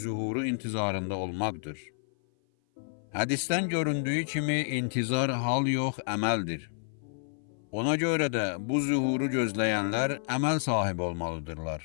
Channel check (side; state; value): right; silent; 55 dB below the other